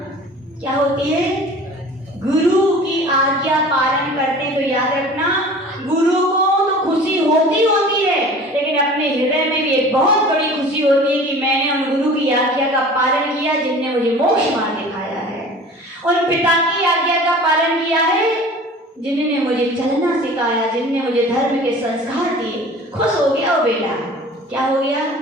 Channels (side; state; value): both; normal; correlation 0.43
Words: क्या होती है, गुरु की आज्ञा पालन करते तो याद रखना, गुरु को तो खुशी होती है, लेकिन अपने हृदय में भी एक बहुत बड़ी खुशी होती है कि मैंने उन गुरु की आज्ञा का पालन किया जिनने मुझे मोक्ष मार्ग दिखाया है। उन पिता की आज्ञा का पालन किया है जिन्होंने मुझे चलना सिखाया, जिनने मुझे धर्म के संस्कार दिए। खुश हो गया वो बेटा, क्या हो गया,